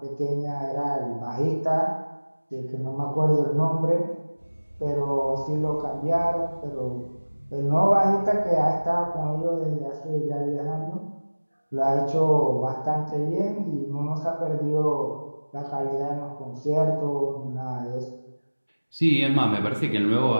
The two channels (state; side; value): inverted; both; correlation -1.00